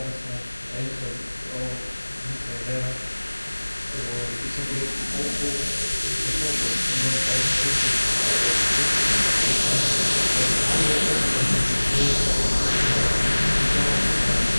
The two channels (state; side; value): inverted; both; correlation -1.00